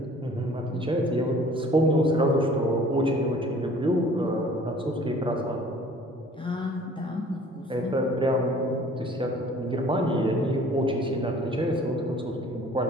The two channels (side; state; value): both; normal; correlation 0.51